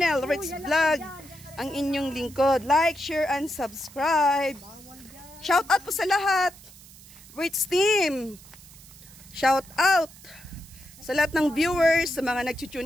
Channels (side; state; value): right; noise; hiss, 21 dB below the sound